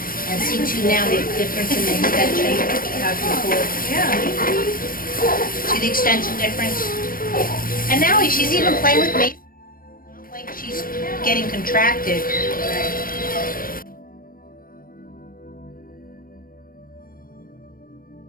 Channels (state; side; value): late; right; 0.41 ms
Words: And see too now the difference in the extension. How it can pull. Yeah. See the extension difference? And now she's even playing with me. Not like she's getting contracted.